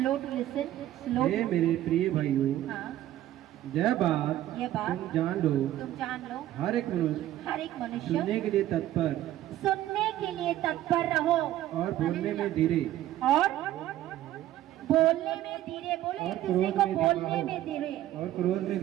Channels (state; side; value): quieter; left; 13.5 dB